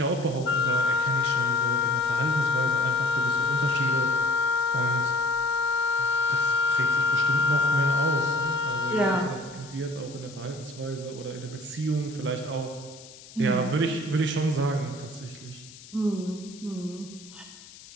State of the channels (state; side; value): noise; left; hiss, 19 dB below the sound